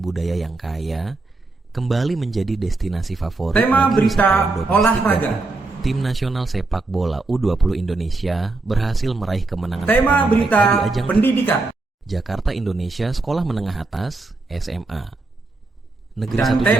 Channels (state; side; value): quieter; left; 3.3 dB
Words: budaya yang kaya, kembali menjadi destinasi favorit Tema bagi berita wisatawan domestik olahraga. dan Tim nasional sepak bola U20 Indonesia berhasil meraih kemenangan Tema pertama mereka berita di ajang pendidikan. Jakarta Indonesia Sekolah Menengah Atas SMA. Negeri Dan 1